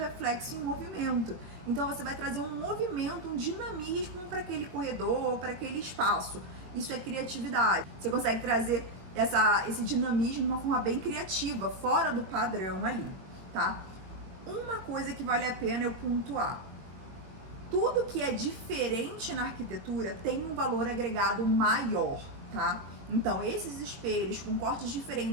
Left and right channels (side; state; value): left; late; 21 ms